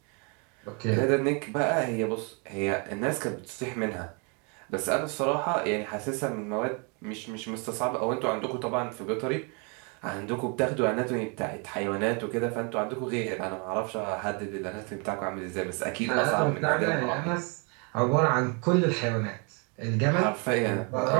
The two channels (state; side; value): quieter; left; 34.2 dB